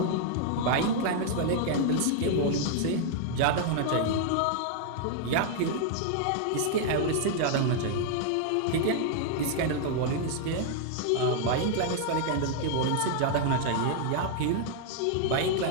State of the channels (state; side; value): different; both; correlation 0.00